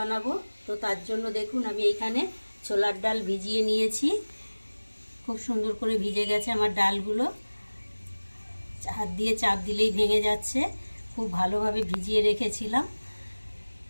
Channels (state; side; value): inverted; both; correlation -1.00